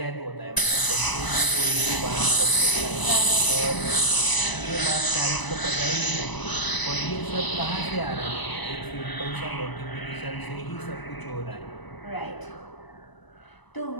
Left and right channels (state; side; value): late; right; 1.0 ms